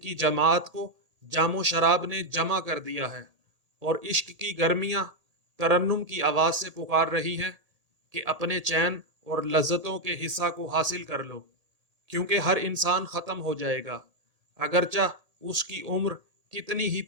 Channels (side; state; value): left; late; 1.8 ms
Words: جماعت کو جام و شراب نے جمع کر دیا ہے اور عشق کی گرمیاں ترنم کی آواز سے پکار رہی ہیں کہ اپنے چین اور لذتوں کے حصہ کو حاصل کر لو، کیونکہ ہر انسان ختم ہو جائے گا، اگرچہ اس کی عمر کتنی ہی